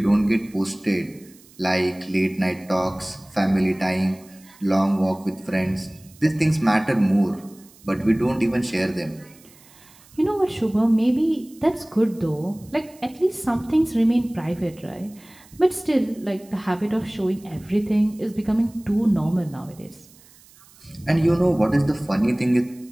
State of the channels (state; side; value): noise; right; hiss, 26 dB below the sound